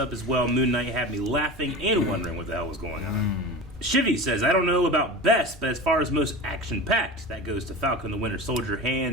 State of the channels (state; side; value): normal; both; correlation 0.31